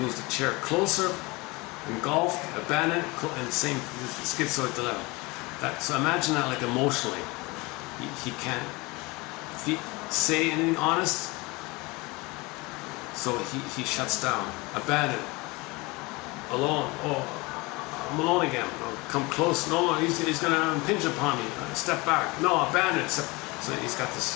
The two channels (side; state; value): right; quieter; 24.5 dB